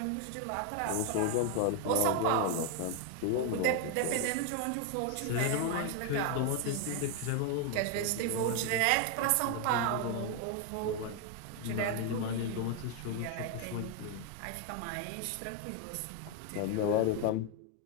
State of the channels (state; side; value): different; both; correlation 0.01